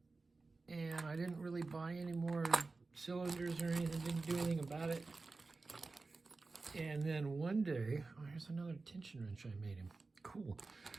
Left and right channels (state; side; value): quieter; left; 3.8 dB